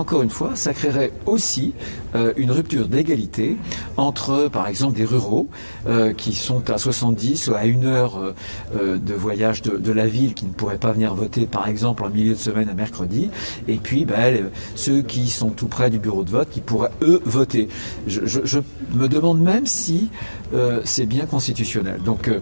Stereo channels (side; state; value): both; inverted; correlation -1.00